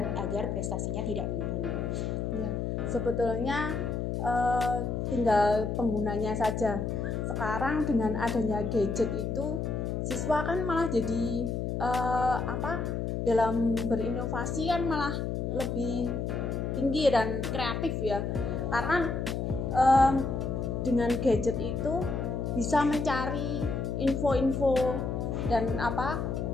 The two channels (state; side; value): noise; left; hum, 2 dB below the sound